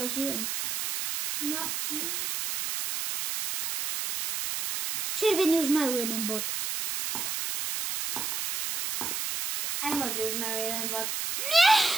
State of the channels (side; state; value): right; noise; hiss, 3 dB below the sound